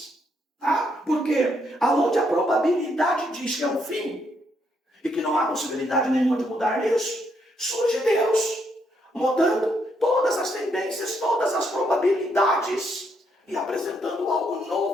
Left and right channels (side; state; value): both; normal; correlation 0.75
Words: Tá? Porque aonde a probabilidade diz que é o fim, e que não há possibilidade nenhuma de mudar isso, surge Deus, mudando todas as tendências, todas as probabilidades, e apresentando algo